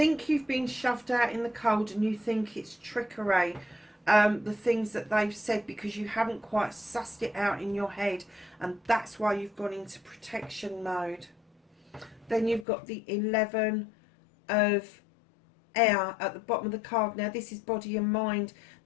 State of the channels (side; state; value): right; drops out; at 12.7 s